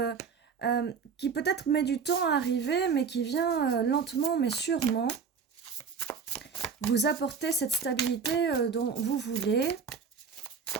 qui peut-être met du temps à arriver, mais qui vient lentement mais sûrement vous apporter cette stabilité dont vous voulez.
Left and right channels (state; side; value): quieter; left; 5.9 dB